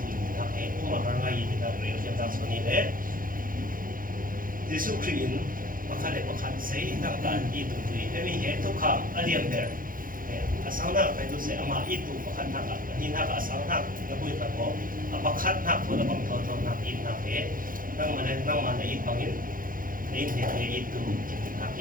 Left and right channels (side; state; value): left; late; 0.40 ms